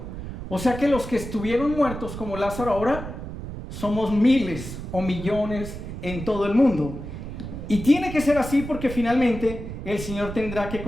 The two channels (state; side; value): noise; right; rumble, 9 dB below the sound